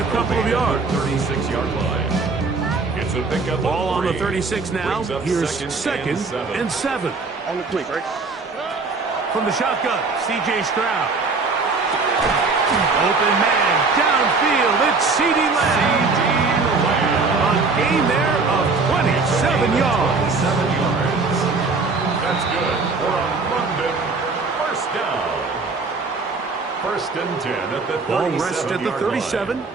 couple of yards. 36-yard line. It's a pickup. Ball on the 36 now. Here's second and 7. On the quick, right? From the shotgun, C.J. Stroud. Open man, downfield, it's CeeDee Lamb. A gain there of 27 yards. 7 yards. That's good for a London first down. First and 10 at the 37-yard line. Ball rests at the 37.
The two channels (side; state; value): left; quieter; 4.1 dB